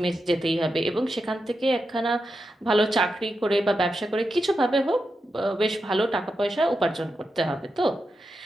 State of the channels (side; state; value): both; normal; correlation 0.88